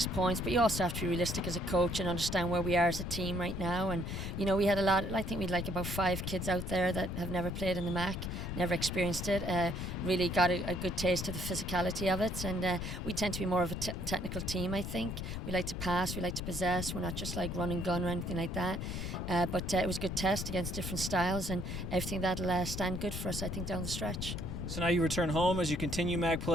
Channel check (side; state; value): left; noise; rumble, 5 dB below the sound